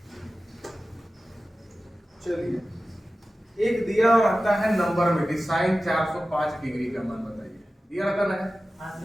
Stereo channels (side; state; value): both; normal; correlation 0.95